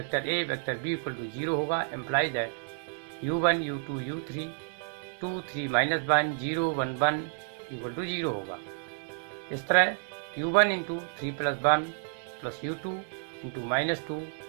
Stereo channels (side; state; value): left; silent; digital silence